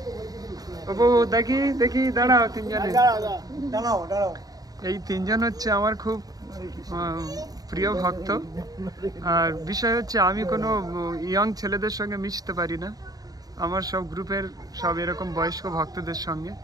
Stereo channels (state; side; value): late; left; 0.18 ms